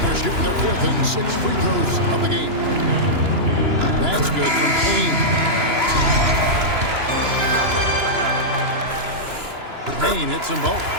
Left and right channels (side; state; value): left; late; 2.9 ms